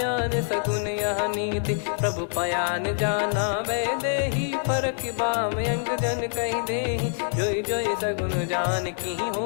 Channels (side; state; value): right; silent; digital silence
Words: सगुन यह नीति। प्रभु पयान जाना वै देहि, फरक बाम अंग जन कहि देहि। जोई जोई सगुन जान की